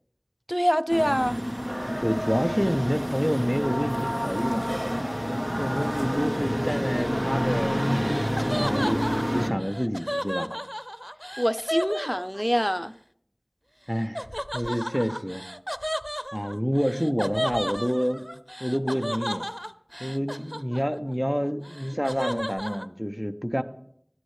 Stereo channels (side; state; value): both; identical; correlation 1.00